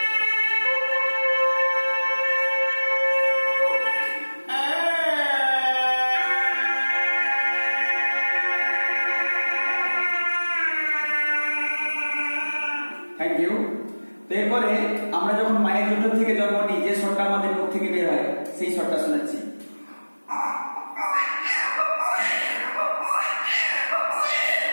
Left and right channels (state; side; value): inverted; both; correlation -1.00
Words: Thank you. তো এরপরে আমরা যখন মায়ের দুধ থেকে জন্ম নিই, যে স্বরটা আমাদের মুখ থেকে বের হয় সেই স্বরটা শোনাচ্ছি।